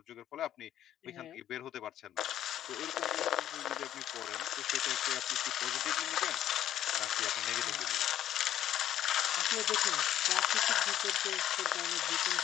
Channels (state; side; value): quieter; right; 11.4 dB